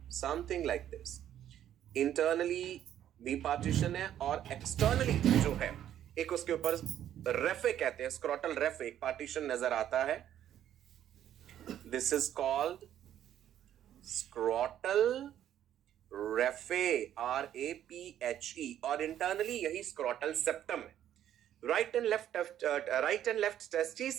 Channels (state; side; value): quieter; left; 11.0 dB